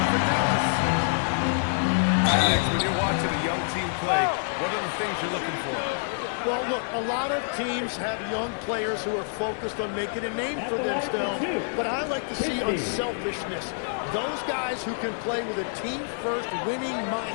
for Dallas. Alex, when you're watching a young team play, what are the things you're looking for? Well, look, a lot of teams have young players who are focused on making a name for themselves, but I like to see unselfishness. Those guys who can play with a team-first winning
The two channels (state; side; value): silent; right; digital silence